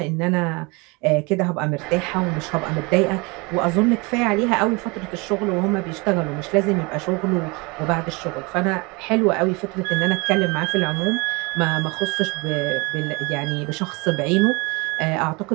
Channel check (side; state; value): left; quieter; 27.4 dB